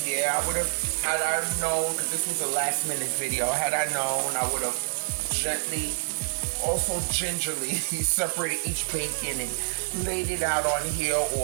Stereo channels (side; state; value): left; silent; digital silence